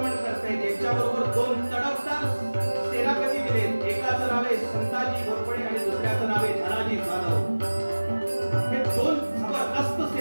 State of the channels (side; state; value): both; inverted; correlation -1.00